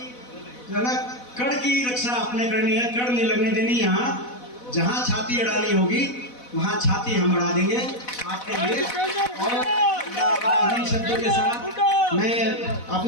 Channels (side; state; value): right; late; 4.1 ms